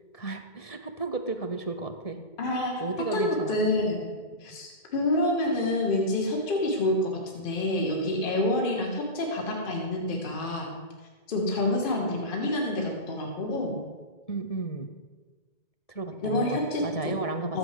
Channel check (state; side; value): late; right; 2.5 ms